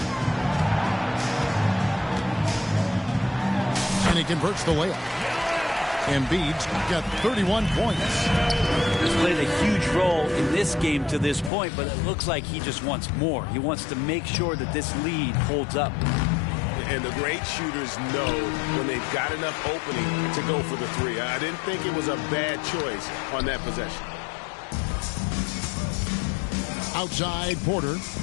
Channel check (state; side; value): drops out; right; at 11.5 s